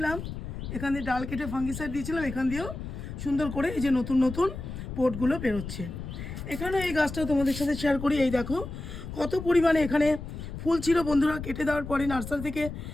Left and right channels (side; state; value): left; noise; rumble, 8 dB below the sound